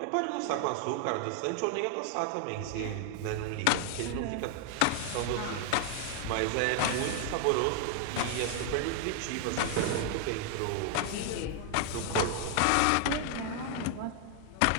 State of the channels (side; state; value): both; different; correlation 0.00